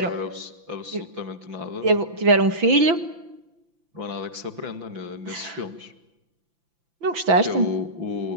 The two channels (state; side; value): late; left; 5.9 ms